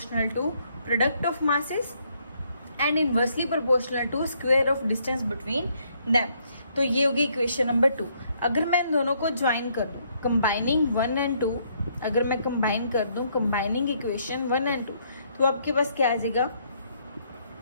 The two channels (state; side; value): inverted; both; correlation -0.70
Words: to product of masses and inversely proportional to square of distance between them. तो ये होगी इक्वेशन नंबर 2। अगर मैं इन दोनों को ज्वाइन कर दूँ, कंबाइनिंग 1 एंड 2, अगर मैं कंबाइन कर दूँ कंबाइनिंग इक्वेशन 1 एंड 2, तो आपके पास क्या आ जाएगा,